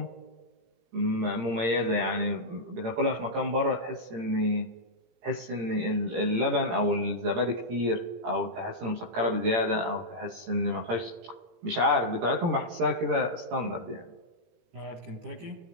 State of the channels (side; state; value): left; late; 17 ms